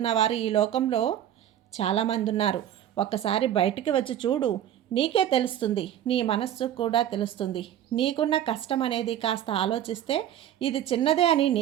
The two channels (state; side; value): quieter; left; 11.1 dB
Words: వారు ఈ లోకంలో చాలామంది ఉన్నారు. ఒక్కసారి బయటికి వచ్చి చూడు, నీకే తెలుస్తుంది. నీ మనస్సు కూడా తెలుస్తుంది. నీకున్న కష్టం అనేది కాస్త ఆలోచిస్తే ఇది చిన్నదే అని